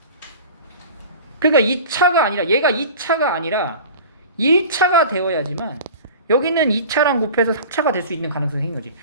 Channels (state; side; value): inverted; both; correlation -0.37